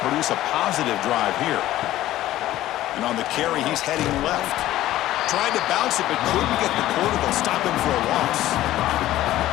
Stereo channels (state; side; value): quieter; right; 14.6 dB